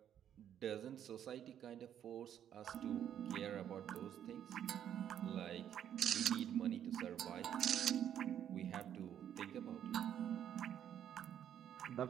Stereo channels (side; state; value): left; quieter; 9.9 dB